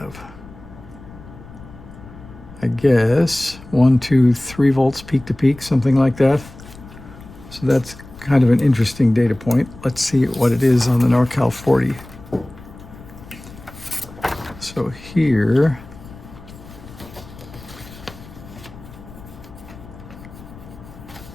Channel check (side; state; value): left; noise; rumble, 18 dB below the sound